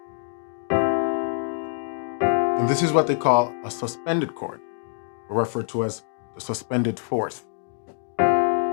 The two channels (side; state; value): right; silent; digital silence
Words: And this is what they call a suspended chord, or referred to as the suspended fourth.